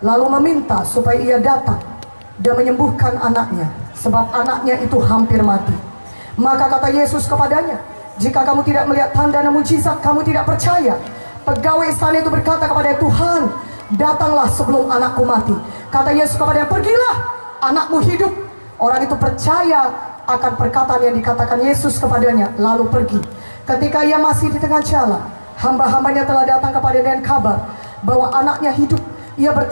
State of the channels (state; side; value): inverted; both; correlation -1.00